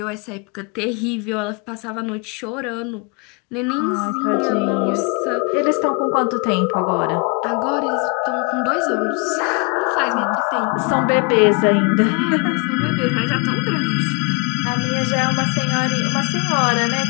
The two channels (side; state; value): right; quieter; 33.2 dB